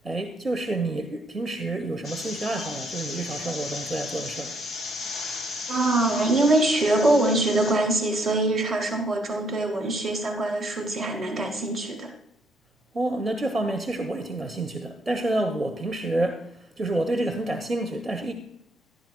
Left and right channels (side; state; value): both; normal; correlation 0.71